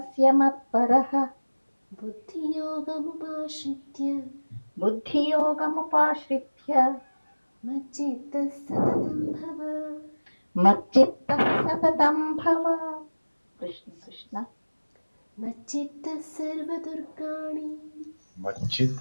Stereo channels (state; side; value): inverted; both; correlation -1.00